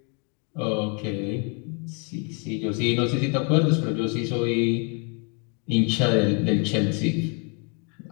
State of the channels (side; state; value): right; quieter; 36.8 dB